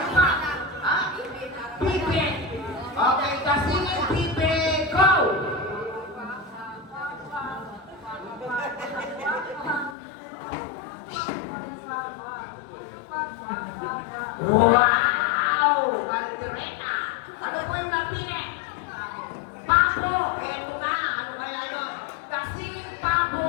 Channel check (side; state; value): right; drops out; at 10.0 s